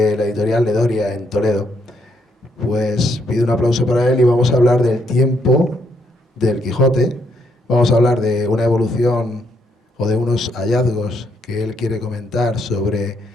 la editorial Ledoria en Toledo. Pues pido un aplauso para él y vamos a hablar del tiempo del Quijote. Vamos a hablar de una evolución o de unos hallazgos que él quiere comentar sobre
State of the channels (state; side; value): normal; both; correlation 0.74